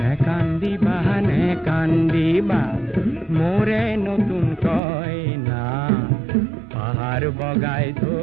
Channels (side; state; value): left; drops out; at 4.8 s